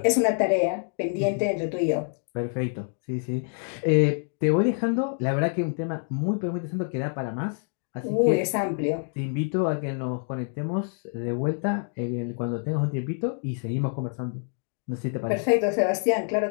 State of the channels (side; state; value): right; silent; 60 dB below the other